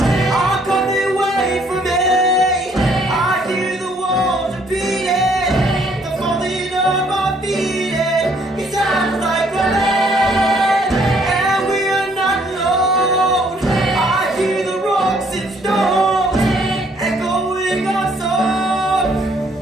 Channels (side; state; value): both; normal; correlation 0.65